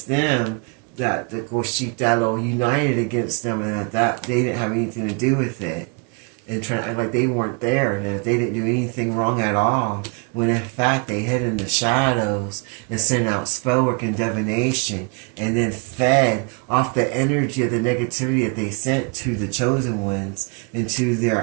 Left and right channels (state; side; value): quieter; left; 35.0 dB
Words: them, that the Goshitalo united against them, and that they didn't have anything to do with it, and trying to act like they weren't there and that they didn't do anything wrong at all, when in fact they hid in the shadows and sent out spell work and divination, and then fed off the energy of the negativity that they sent to the chosen ones and to